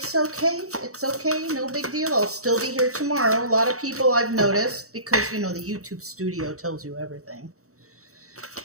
okay. It's okay. No big deal. I'll still be here tomorrow. A lot of people I've noticed, because, the YouTube studio tells you everything.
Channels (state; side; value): late; left; 0.64 ms